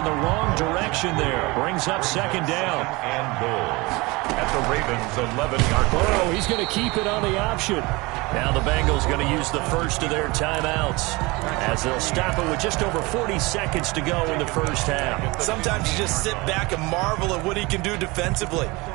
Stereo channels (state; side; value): quieter; left; 23.9 dB